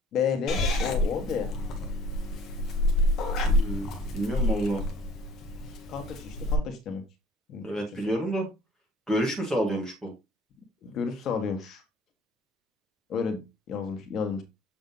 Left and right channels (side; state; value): both; normal; correlation 0.53